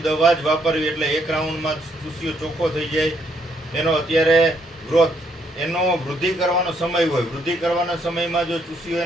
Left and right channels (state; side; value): normal; both; correlation 0.72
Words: જ વાપરવી. એટલે 1 રાઉન્ડમાં ચૂસિયો ચોખ્ખો થઈ જાય. એનો અત્યારે ગ્રોથ, એનો વૃદ્ધિ કરવાનો સમય હોય, વૃદ્ધિ કરવાના સમયમાં જો ચૂસિયો